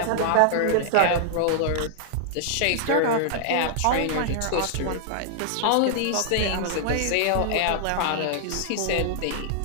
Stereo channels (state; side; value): different; both; correlation -0.01